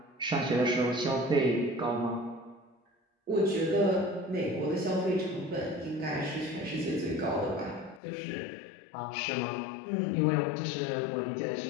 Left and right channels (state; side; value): drops out; right; at 8.0 s